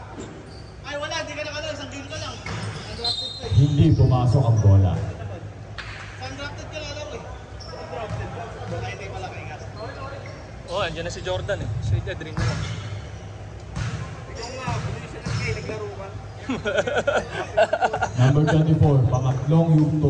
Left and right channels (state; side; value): identical; both; correlation 1.00